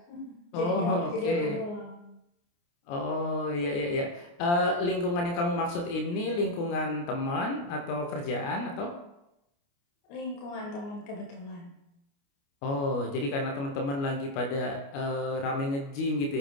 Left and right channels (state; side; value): late; right; 29 ms